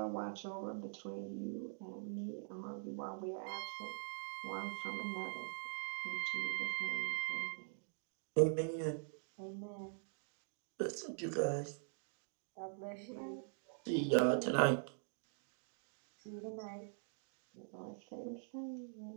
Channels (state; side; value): silent; left; digital silence